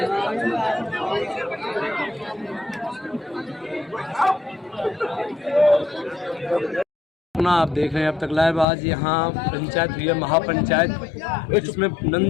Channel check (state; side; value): drops out; right; at 8.7 s